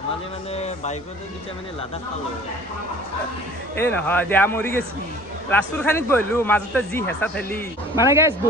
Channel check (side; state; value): both; normal; correlation 0.48